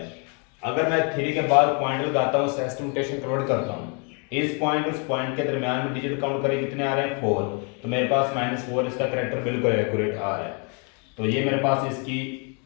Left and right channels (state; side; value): quieter; right; 36.3 dB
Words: अगर मैं 3 के बाद पॉइंट लगाता हूँ, एस्टिमेशन कन्वर्ट करता हूँ, इस पॉइंट उस पॉइंट के दरमियान में डिजिट काउंट करें कितने आ रहे हैं? 4। तो मेरे पास -4 इसका करैक्टर बिल्कुल एक्यूरेट आ रहा है। तो ये मेरे पास